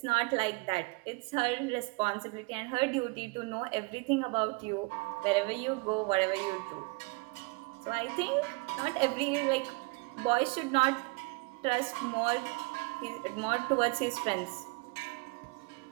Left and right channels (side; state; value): left; quieter; 28.0 dB